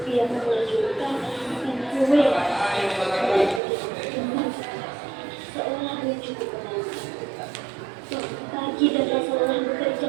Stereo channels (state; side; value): drops out; left; at 3.6 s